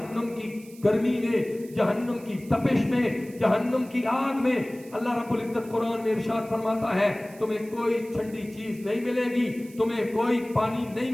کی گرمی میں، جہنم کی تپش میں، جہنم کی آگ میں اللہ رب العزت قرآن میں ارشاد فرماتا ہے تمہیں کوئی ٹھنڈی چیز نہیں ملے گی، تمہیں کوئی پانی نہیں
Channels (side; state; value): right; noise; hiss, 23 dB below the sound